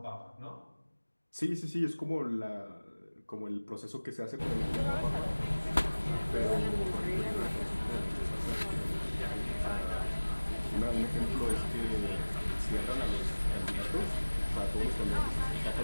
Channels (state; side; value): inverted; both; correlation -1.00